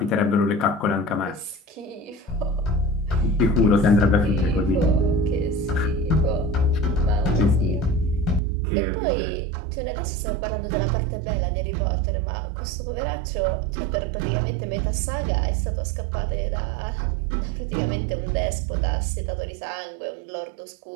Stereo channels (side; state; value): left; drops out; at 8.4 s